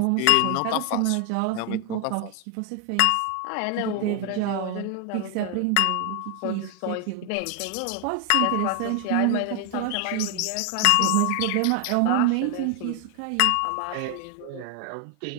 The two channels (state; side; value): different; both; correlation 0.00